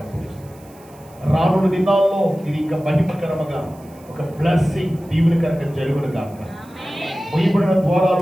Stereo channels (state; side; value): noise; right; hiss, 27 dB below the sound